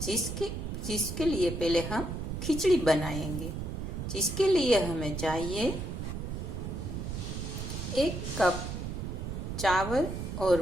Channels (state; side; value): noise; right; rumble, 5 dB below the sound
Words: जिसके लिए पहले हम खिचड़ी बनाएंगे। जिसके लिए हमें चाहिए 1 कप चावल